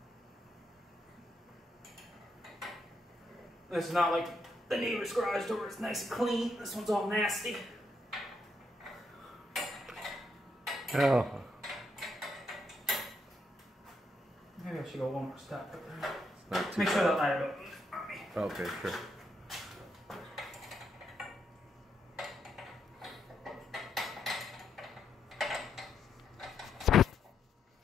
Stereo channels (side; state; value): both; normal; correlation 0.78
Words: This is not like the neighbor's garage door, it's nice and clean. This one's all nasty. Oh. Maybe I should go one more step. Make sure that ladder goes. Okay, sure.